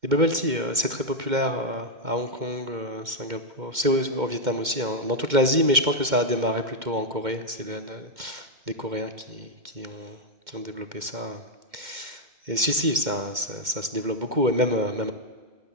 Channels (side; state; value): left; late; 2.1 ms